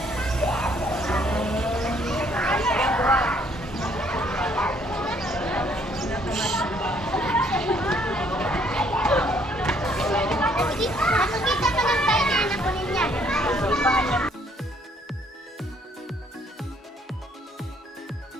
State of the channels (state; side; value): normal; both; correlation 0.65